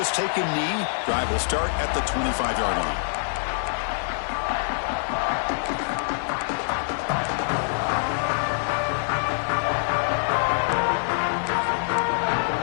take a knee. Drive will start at the 25-yard line.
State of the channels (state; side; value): silent; right; digital silence